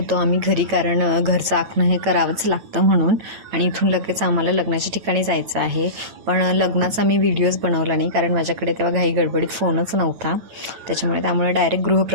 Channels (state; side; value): late; left; 9.0 ms